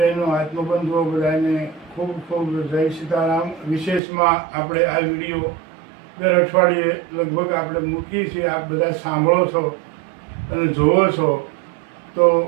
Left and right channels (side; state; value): left; drops out; at 4.0 s